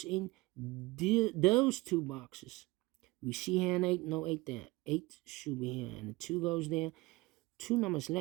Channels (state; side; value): quieter; left; 21.9 dB